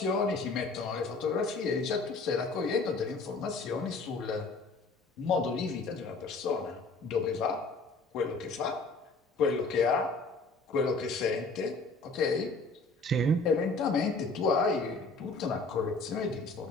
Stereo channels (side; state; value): right; quieter; 3.6 dB